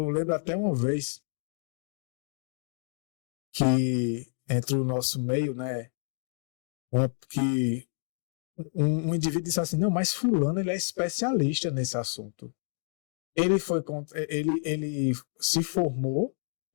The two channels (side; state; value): right; silent; digital silence